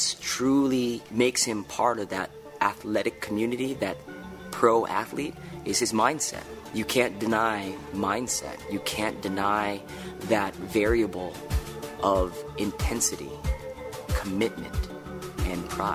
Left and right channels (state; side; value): identical; both; correlation 1.00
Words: truly makes him part of that athletic community, that pro athlete, is his mindset. You can't deny mindset. You can't deny that variable of intensity, commitment, and